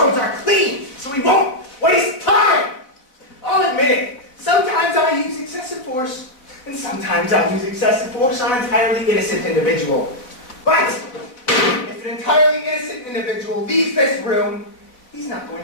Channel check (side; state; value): right; late; 4.0 ms